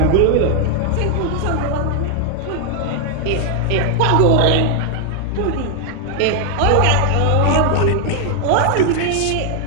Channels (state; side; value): different; both; correlation 0.00